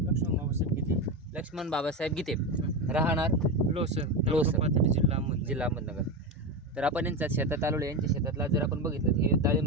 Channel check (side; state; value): both; normal; correlation 0.16